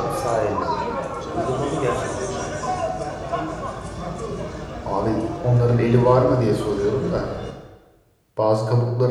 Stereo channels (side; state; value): both; identical; correlation 1.00